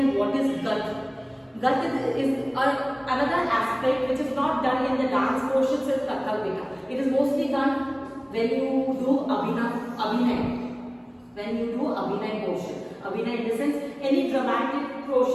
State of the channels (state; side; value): identical; both; correlation 1.00